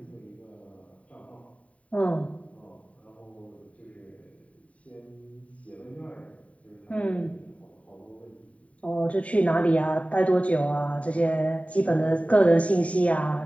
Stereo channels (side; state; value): right; late; 0.066 ms